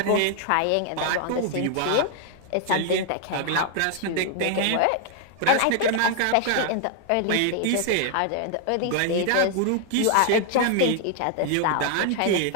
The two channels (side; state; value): both; different; correlation 0.00